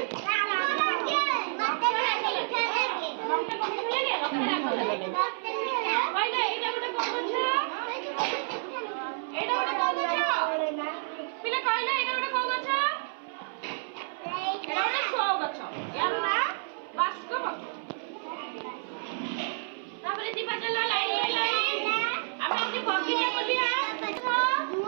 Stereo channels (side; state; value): left; silent; 58 dB below the other